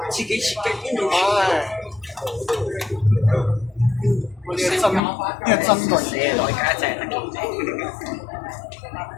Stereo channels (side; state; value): right; drops out; at 5.0 s